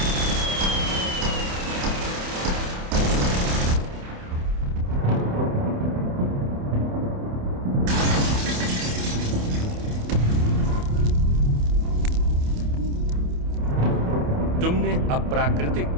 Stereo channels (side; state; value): left; late; 28 ms